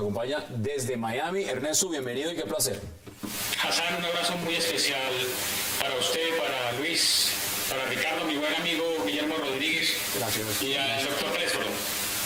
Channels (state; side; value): identical; both; correlation 1.00